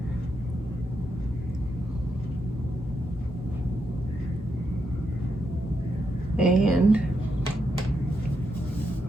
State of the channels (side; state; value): both; normal; correlation 0.83